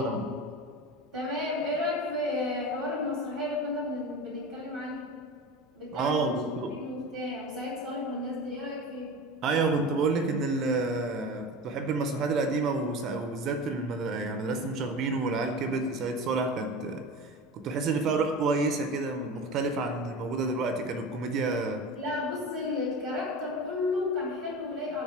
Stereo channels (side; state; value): both; normal; correlation 0.30